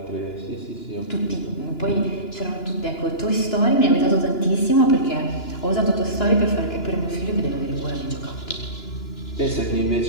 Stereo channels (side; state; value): right; late; 2.9 ms